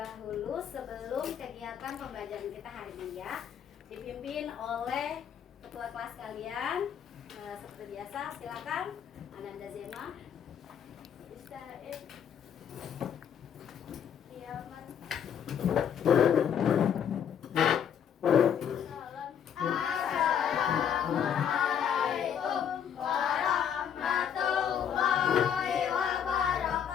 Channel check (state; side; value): quieter; right; 8.4 dB